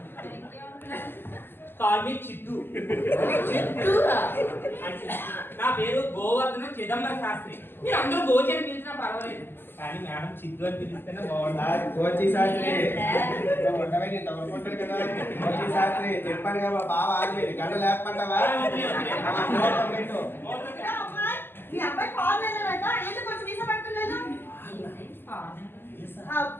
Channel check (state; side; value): late; right; 0.10 ms